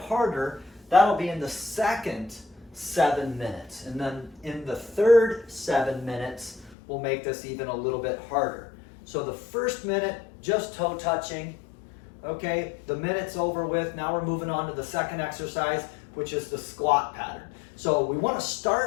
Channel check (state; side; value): drops out; right; at 6.8 s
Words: that'll be in the second 7 minutes. And then in the third 7 minutes, we'll make this even a little bit harder. So the first minute, just toe touching, okay? The minute's over with. Now we're moving on to the second exercise, which is the squat pattern. So we want to